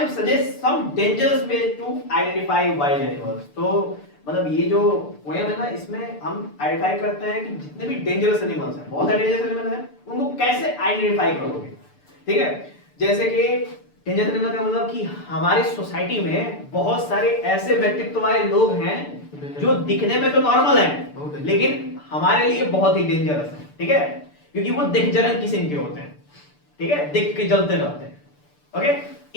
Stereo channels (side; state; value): right; late; 6.8 ms